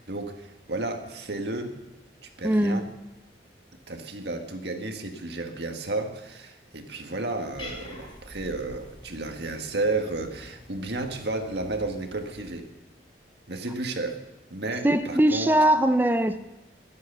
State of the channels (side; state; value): both; normal; correlation 0.55